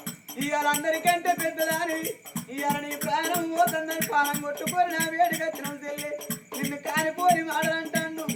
అందరికంటే పెద్దదాని ఇవాళ నీ ప్రాణం పోతుందని పానం కొట్టుకొని నా వేడికి వచ్చిన చెల్లి నిన్ను కానిపోని మాటలంటాను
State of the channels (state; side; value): identical; both; correlation 1.00